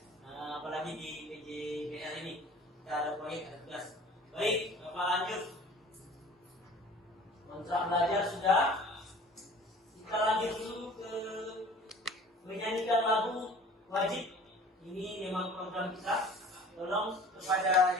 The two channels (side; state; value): both; normal; correlation 0.46